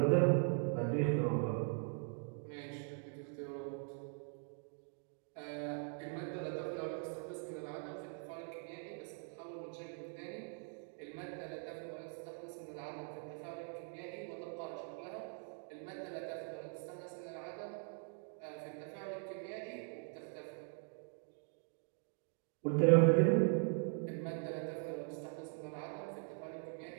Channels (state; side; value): silent; left; 50 dB below the other